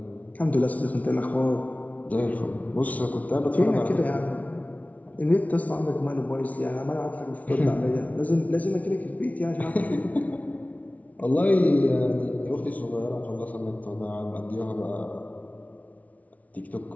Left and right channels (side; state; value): right; late; 0.070 ms